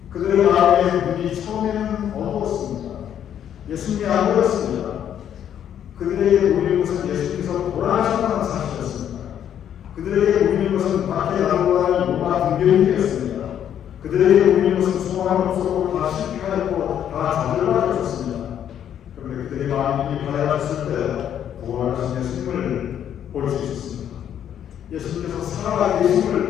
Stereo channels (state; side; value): quieter; right; 9.7 dB